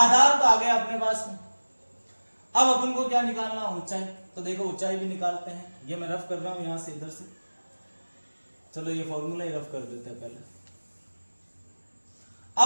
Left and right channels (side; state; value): both; inverted; correlation -1.00